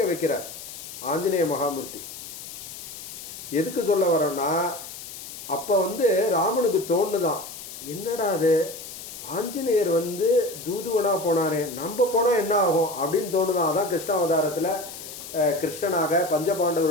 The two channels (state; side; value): noise; left; hiss, 12 dB below the sound